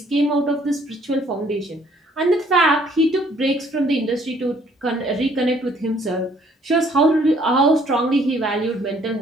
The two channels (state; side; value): normal; both; correlation 0.62